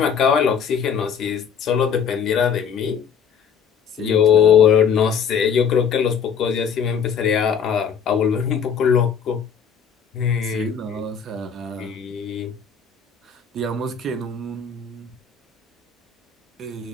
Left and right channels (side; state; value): right; quieter; 7.0 dB